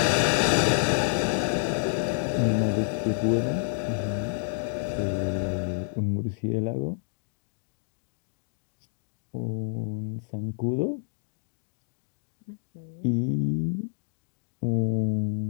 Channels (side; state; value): right; silent; digital silence